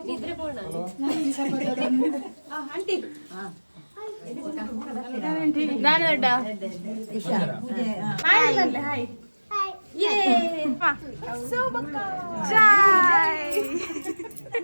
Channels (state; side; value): inverted; both; correlation -1.00